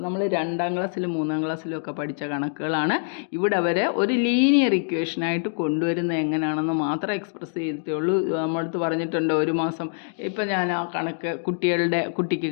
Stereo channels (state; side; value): silent; right; digital silence